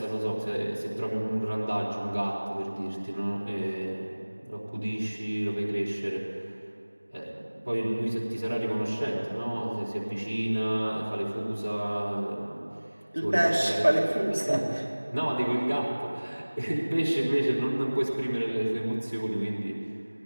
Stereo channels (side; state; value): both; inverted; correlation -1.00